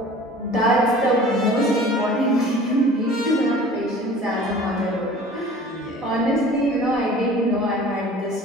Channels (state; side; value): normal; both; correlation 0.45